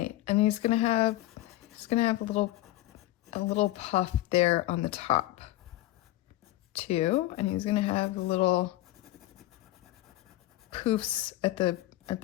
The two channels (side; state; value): right; quieter; 16.2 dB